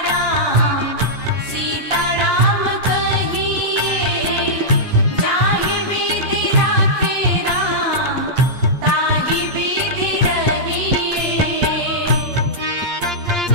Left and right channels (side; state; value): left; late; 8.6 ms